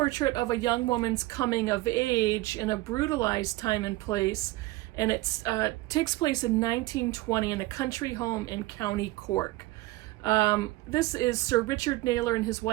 of a young woman's coming of age in a brutalized time and place, and it takes place in 1920 in a country home in County Cork. This is Sir Richard Naylor and his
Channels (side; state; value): left; quieter; 19.3 dB